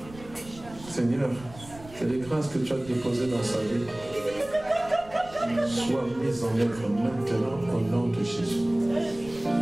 Seigneur, que les grâces que tu as déposées dans sa vie soient mises en œuvre maintenant au nom de Jésus.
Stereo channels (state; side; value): noise; right; rumble, 19 dB below the sound